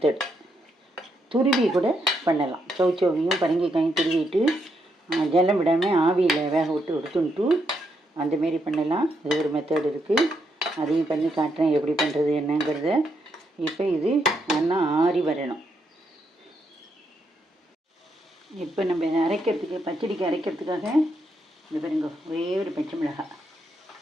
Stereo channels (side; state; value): both; normal; correlation 0.79